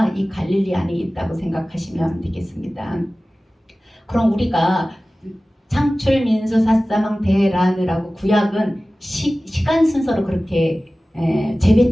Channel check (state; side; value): normal; both; correlation 0.97